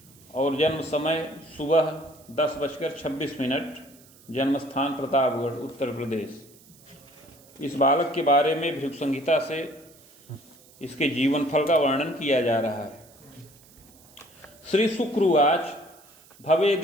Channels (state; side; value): noise; right; hiss, 26 dB below the sound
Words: और जन्म समय सुबह 10:26। जन्म स्थान प्रतापगढ़, उत्तर प्रदेश। इस बालक के बारे में भृगु संहिता से इसके जीवन फल का वर्णन किया जा रहा है। श्री शुक्रवाच